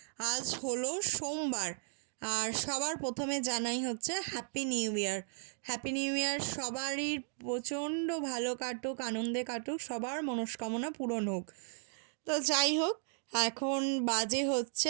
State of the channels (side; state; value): left; silent; digital silence